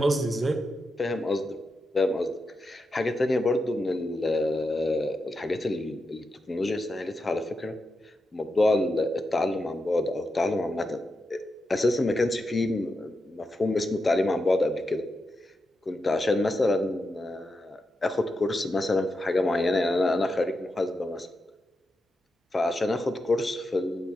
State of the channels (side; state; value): both; normal; correlation 0.87